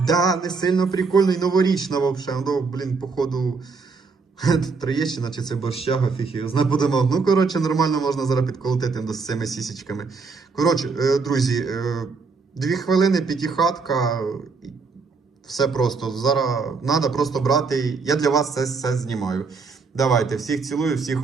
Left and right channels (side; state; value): left; quieter; 4.6 dB